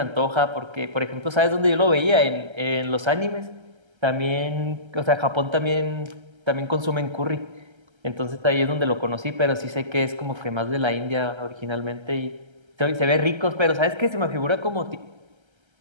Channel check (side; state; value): left; late; 1.3 ms